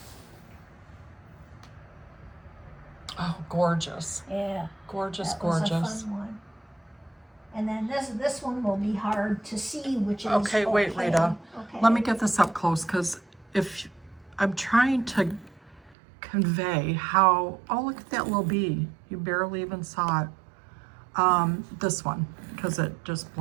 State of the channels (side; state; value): left; drops out; at 16.0 s